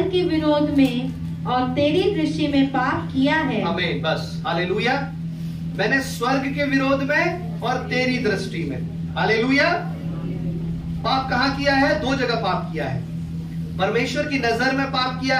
के विरोध में और तेरी दृष्टि में पाप किया है। आमीन, बस, हालेलुया। मैंने स्वर्ग के विरोध में और तेरी दृष्टि में, हालेलुया। पाप कहाँ किया है? दो जगह पाप किया है। परमेश्वर की नजर में पाप किया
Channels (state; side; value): identical; both; correlation 1.00